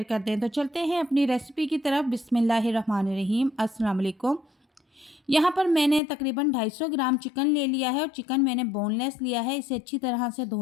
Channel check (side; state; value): right; drops out; at 6.0 s